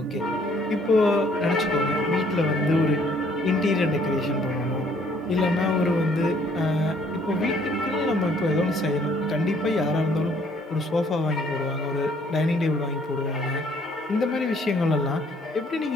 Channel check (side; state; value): both; normal; correlation 0.63